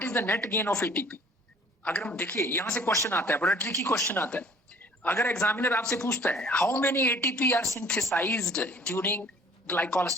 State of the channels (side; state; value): both; normal; correlation 0.53